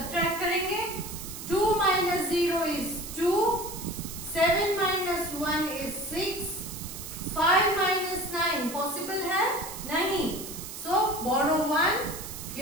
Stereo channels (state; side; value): noise; right; hiss, 10 dB below the sound